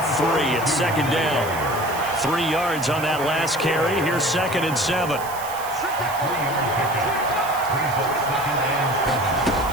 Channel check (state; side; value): noise; right; hiss, 14 dB below the sound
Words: 3 at 2nd down. 3 yards on that last carry. Here's 2nd and 7.